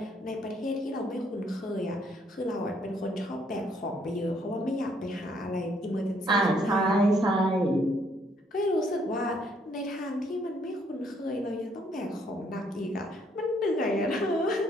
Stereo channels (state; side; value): normal; both; correlation 0.68